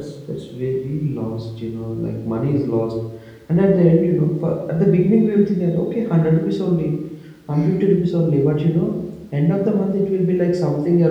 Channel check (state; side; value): identical; both; correlation 1.00